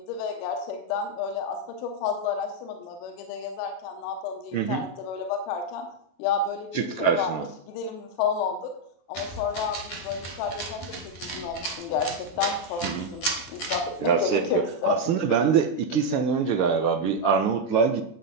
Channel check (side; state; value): right; late; 23 ms